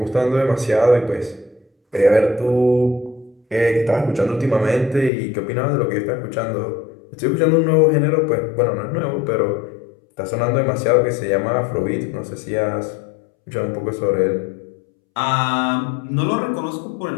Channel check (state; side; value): drops out; right; at 5.1 s